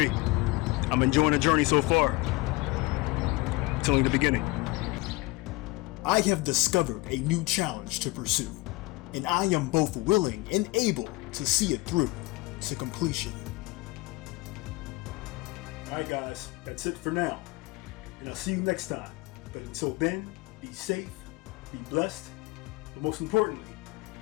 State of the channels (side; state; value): right; quieter; 21.9 dB